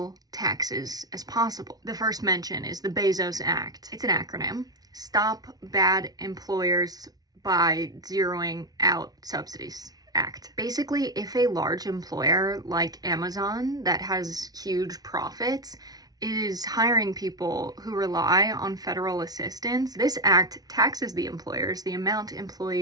taxes as possible. The first mention is the Bezos Act. It's an acronym. Stop Bad Employers by Zeroing Out Subsidies Act. Basically, if a large employer like Amazon that has huge profits is hiring people who rely on federal assistance, this act taxes the employers the amount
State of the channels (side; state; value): left; late; 0.19 ms